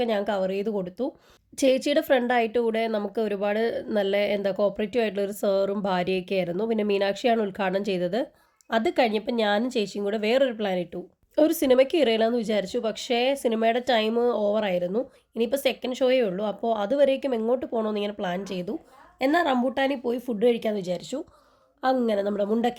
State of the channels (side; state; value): both; identical; correlation 1.00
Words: ഞാൻ കവർ ചെയ്ത് കൊടുത്തു. ചേച്ചിയുടെ ഫ്രണ്ടായിട്ട് കൂടെ നമുക്ക് ഒരുപാട് നല്ല കോപ്പറേറ്റീവ് ആയിട്ടുള്ള ഒരു സാറും ഭാര്യയൊക്കെ ആയിരുന്നു. പിന്നെ മീനാക്ഷിയാണ് ഉദ്ഘാടനം ചെയ്തത്. അത് കഴിഞ്ഞപ്പോൾ ഞാനും ചേച്ചിയും കൂടെ വേറൊരു പ്ലാൻ ഇട്ടു. ഒരു സിനിമയ്ക്ക് ഇറയില്ലെന്ന് വിചാരിച്ചു. പക്ഷേ സിനിമയുടെ ടൈം ഓവറായിരുന്നു. ഇനിയിപ്പോൾ സെക്കൻഡ് ഷോയേ ഉള്ളൂ. അപ്പോൾ അതുവരേക്കും എങ്ങോട്ട് പോകണമെന്ന് ഇങ്ങനെ പ്ലാൻ ചെയ്തു. എന്നാൽ റംബൂട്ടാനിൽ പോയി ഫുഡ് കഴിക്കാമെന്ന് വിചാരിച്ചു. അങ്ങനെ നമ്മുടെ